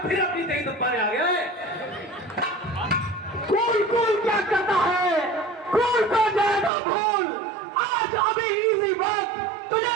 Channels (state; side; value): drops out; left; at 6.7 s